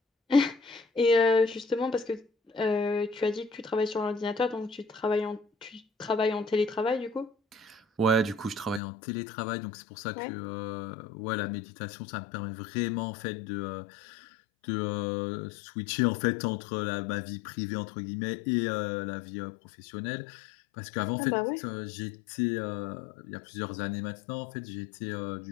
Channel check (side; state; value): right; drops out; at 8.8 s